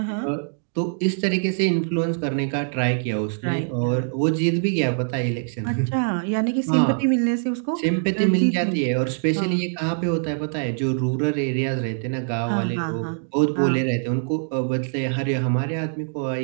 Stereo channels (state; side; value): silent; left; digital silence